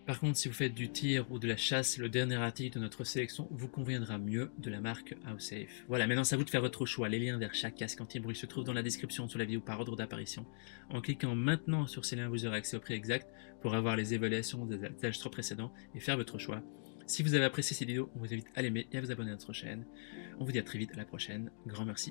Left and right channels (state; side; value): silent; right; digital silence